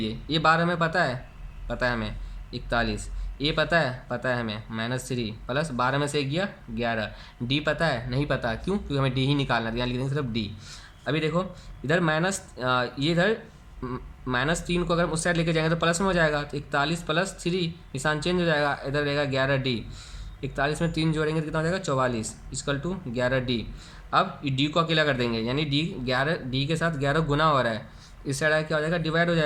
ये 12 हमें पता है हमें 41, ए पता है हमें -3 प्लस 12 में से गया 11, डी पता है नहीं पता, क्यों, क्योंकि हमें डी ही निकालना है, यहाँ लिख देंगे सिर्फ डी। अभी देखो इधर ये इधर -3 को अगर उस साइड लेके जाएंगे तो प्लस में हो जाएगा, तो 41 प्लस 3 निशान चेंज हो जाएगा, इधर रहेगा 11 डी। 41 में 3 जोड़ेंगे तो कितना हो जाएगा 44 इक्वल टू 11 डी। अब डी को अकेला कर देंगे, यानी डी के साथ 11 गुना हो रहा है, इस साइड क्या हो जाएगा, डिवाइड हो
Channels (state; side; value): identical; both; correlation 1.00